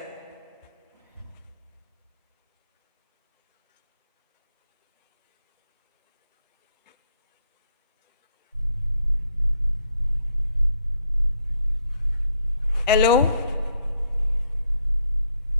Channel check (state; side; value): inverted; both; correlation -0.72